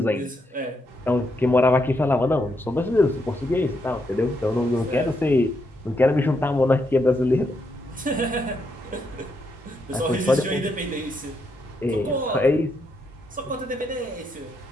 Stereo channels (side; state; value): both; normal; correlation 0.79